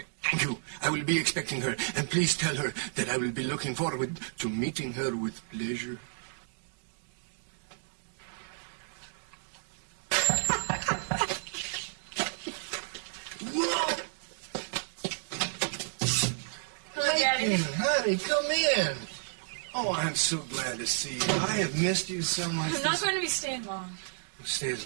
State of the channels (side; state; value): left; silent; digital silence